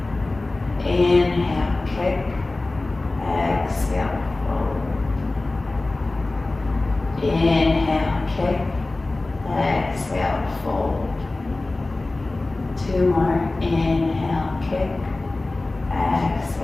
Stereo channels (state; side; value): quieter; right; 3.1 dB